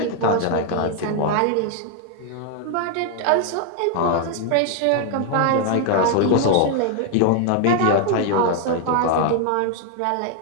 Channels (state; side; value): different; both; correlation 0.01